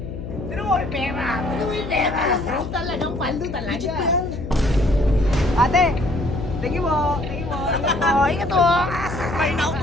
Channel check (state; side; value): noise; left; hum, 9 dB below the sound